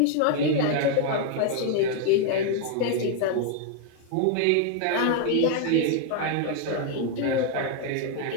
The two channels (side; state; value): both; different; correlation 0.01